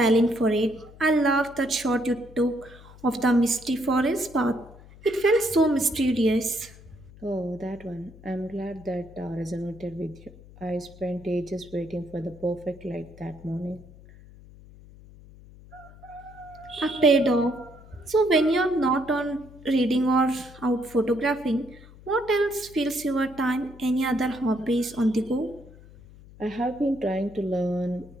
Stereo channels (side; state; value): left; noise; hum, 21 dB below the sound